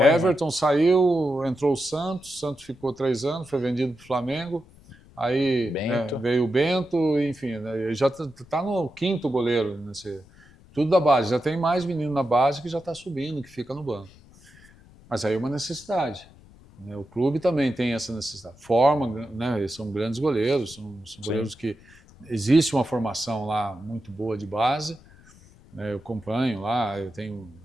saiu, entrou o Santos ficou 3 anos, foi vendido para o Flamengo, aí veio o Bento, enfim, né? Já está no 5º goleiro, tudo da base. Já tem mais menino na base que já está subindo, que fica no banco. Mas aí é uma necessidade. O clube também tem essa necessidade. Forma, né? Eles são grandes goleiros, são goleiros que existe uma formação lá muito boa de base, né? Eu acompanho lá, eu tenho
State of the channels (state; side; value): noise; left; rumble, 25 dB below the sound